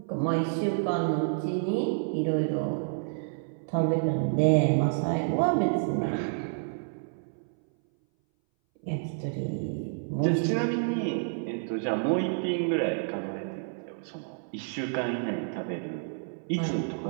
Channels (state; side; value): silent; left; 58 dB below the other